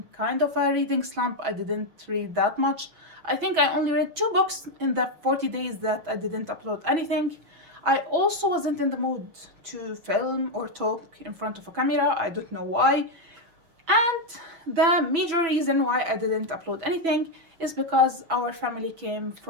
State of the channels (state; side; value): late; left; 6.1 ms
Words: kind of a reading slump. I didn't read that much. I think I only read 2 books in the 40 days that I didn't upload anything. I also wasn't in the mood to film or talk in front of a camera. I don't know why. And the major reason why I didn't upload anything is because our family came